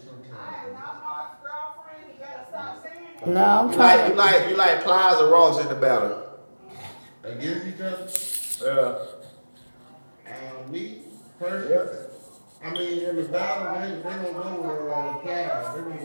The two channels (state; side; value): inverted; both; correlation -1.00